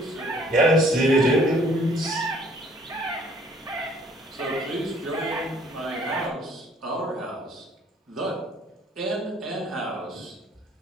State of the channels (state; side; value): normal; both; correlation 0.59